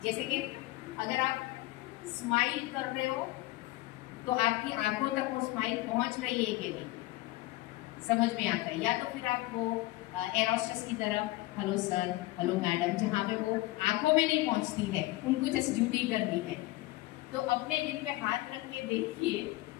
जैसे कि अगर आप स्माइल कर रहे हो तो आपकी आंखों तक वो स्माइल पहुंच रही है कि नहीं, समझ में आता है. या तो फिर आप वो एयर होस्टेस की तरफ हेलो सर, हेलो मैडम, जहाँ पे वो आंखों में नहीं पहुंचती है, उनको जस्ट ड्यूटी करनी है. तो अपने दिल पे हाथ रख के देखिए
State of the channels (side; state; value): right; quieter; 19.0 dB